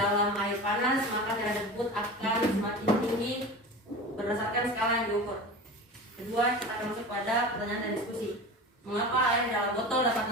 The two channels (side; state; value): both; normal; correlation 0.31